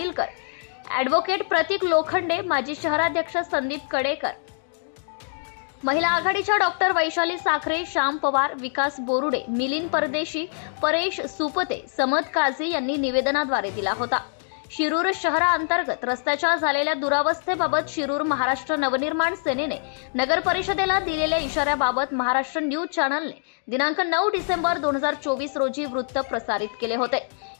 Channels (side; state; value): right; silent; digital silence